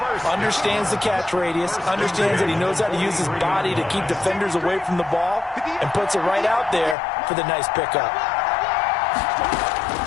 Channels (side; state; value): right; drops out; at 7.0 s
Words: Understands the catch radius. Understands that he knows how to use his body to keep defenders away from the ball. And puts it right out there for the nice pickup.